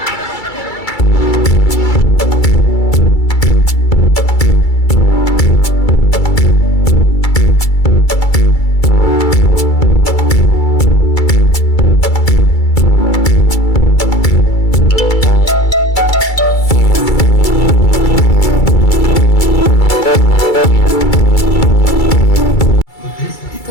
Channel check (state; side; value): late; right; 2.3 ms